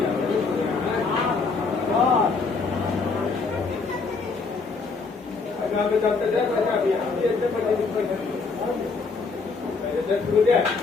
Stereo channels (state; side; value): quieter; right; 4.4 dB